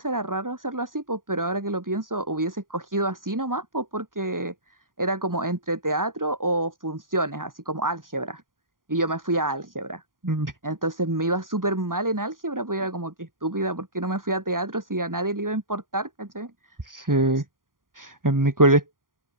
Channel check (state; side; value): late; left; 0.90 ms